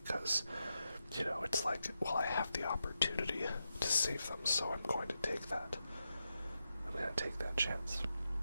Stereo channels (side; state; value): both; inverted; correlation -0.87